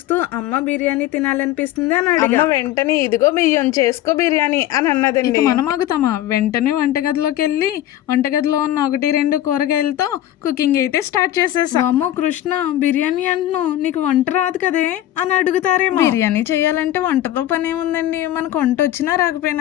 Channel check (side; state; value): right; quieter; 13.2 dB